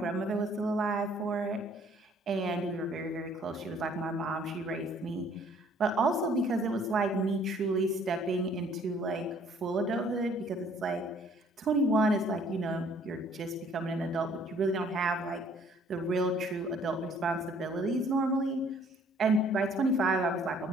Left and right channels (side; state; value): both; normal; correlation 0.59